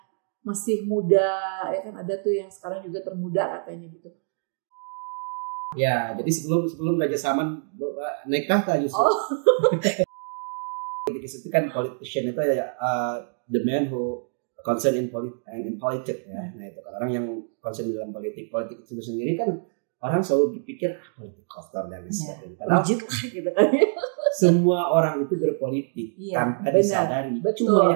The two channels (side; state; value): left; silent; digital silence